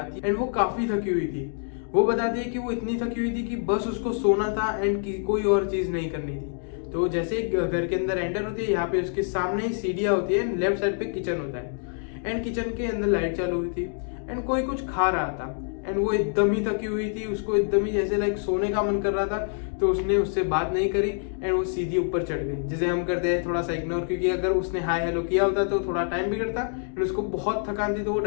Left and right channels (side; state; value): right; silent; 61 dB below the other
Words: एंड वो काफी थकी हुई थी। वो बताती है कि वो इतनी थकी हुई थी कि बस उसको सोना था एंड कोई और चीज नहीं करनी थी। तो जैसे घर के अंदर एंटर होती है, यहाँ पे उसके सामने ही सीढ़ियां होती है, लेफ्ट साइड पे किचन होता है एंड किचन के अंदर लाइट चालू हुई थी एंड कोई कुछ खा रहा था एंड वो एकदम ही थकी हुई थी, उसको एकदम ही जैसे लाइक सोने का मन कर रहा था। तो उसने उससे बात नहीं करी एंड वो सीधी ऊपर चढ़ गई, जैसे हम करते हैं थोड़ा सा इग्नोर, क्योंकि अगर उसने हाय हेलो किया होता तो थोड़ा टाइम बिगड़ता एंड उसको बहुत थकान थी तो वो